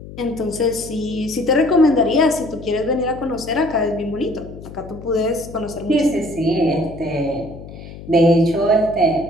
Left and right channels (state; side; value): noise; left; hum, 14 dB below the sound